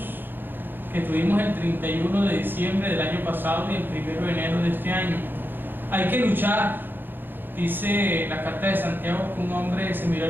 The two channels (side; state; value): left; late; 0.096 ms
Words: que tuvimos el 31 de diciembre del año pasado y el 1 de enero de este año. Hay que luchar, dice la carta de Santiago, que un hombre se miró